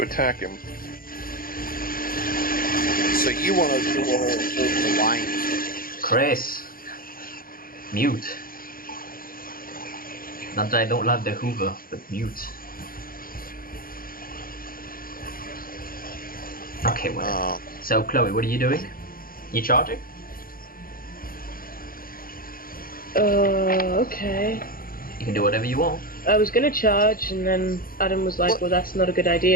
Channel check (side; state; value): right; late; 0.42 ms